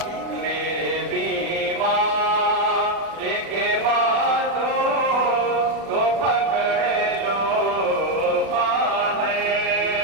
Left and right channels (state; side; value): late; left; 36 ms